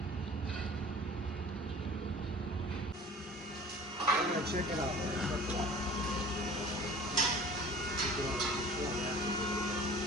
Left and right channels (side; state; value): both; normal; correlation 0.44